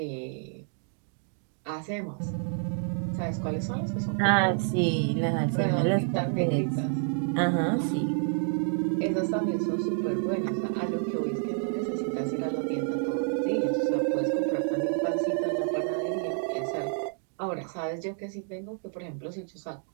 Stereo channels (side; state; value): left; silent; 59 dB below the other